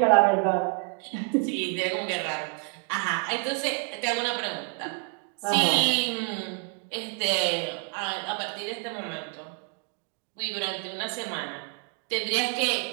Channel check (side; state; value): left; quieter; 36.1 dB